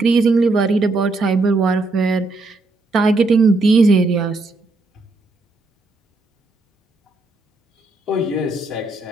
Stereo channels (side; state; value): left; quieter; 3.3 dB